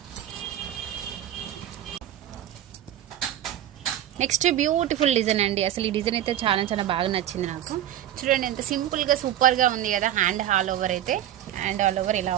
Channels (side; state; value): left; quieter; 11.9 dB